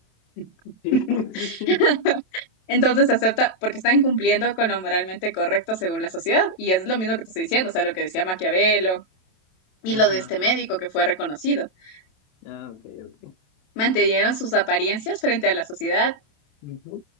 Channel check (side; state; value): right; late; 27 ms